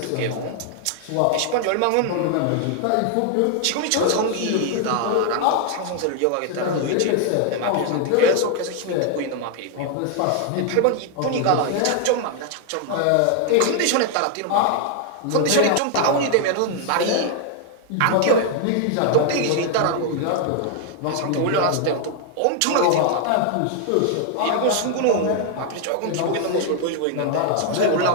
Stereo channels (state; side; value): different; both; correlation 0.00